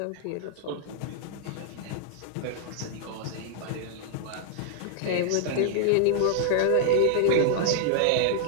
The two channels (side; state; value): both; different; correlation -0.01